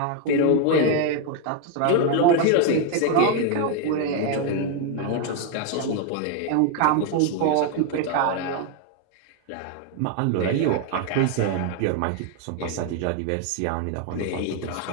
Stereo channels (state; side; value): different; both; correlation 0.01